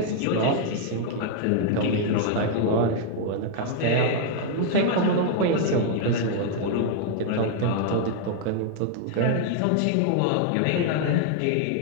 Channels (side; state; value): both; different; correlation 0.00